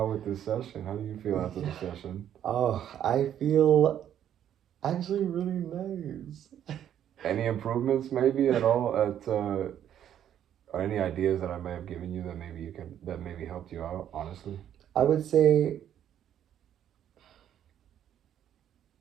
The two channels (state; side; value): quieter; left; 10.3 dB